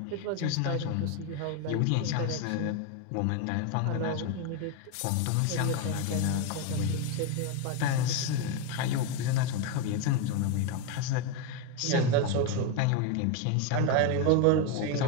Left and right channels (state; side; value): different; both; correlation 0.02